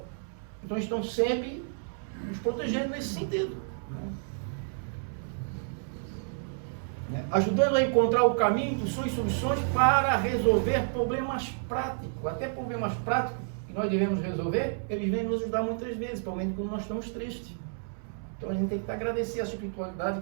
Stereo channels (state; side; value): silent; left; 58 dB below the other